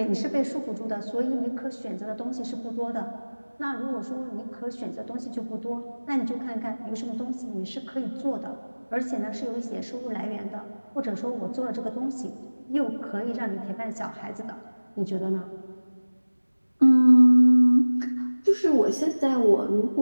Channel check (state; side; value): inverted; both; correlation -1.00